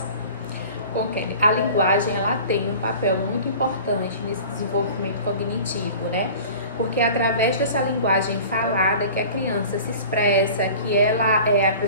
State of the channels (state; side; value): inverted; both; correlation -0.41